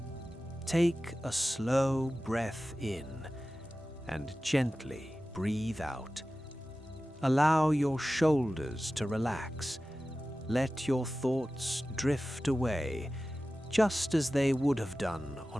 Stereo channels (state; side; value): normal; both; correlation 0.95